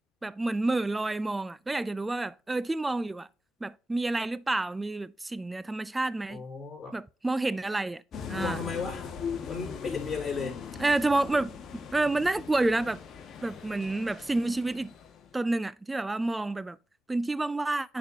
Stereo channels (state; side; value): normal; both; correlation 0.94